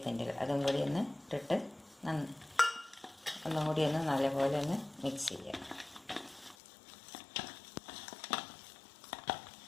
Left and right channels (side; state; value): right; drops out; at 6.6 s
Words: അതും കൂടി ഒന്ന് ഇട്ടിട്ട് ഒന്നും കൂടി ഒന്ന് നല്ലപോലെ ഒന്ന് മിക്സ് ചെയ്യാം.